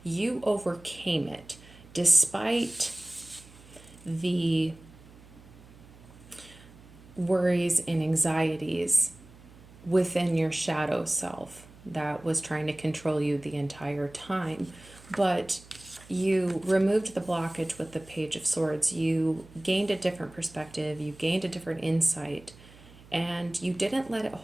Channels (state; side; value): noise; right; hum, 22 dB below the sound